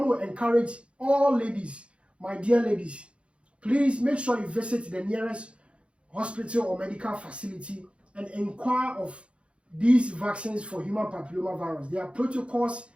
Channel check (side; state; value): left; late; 0.059 ms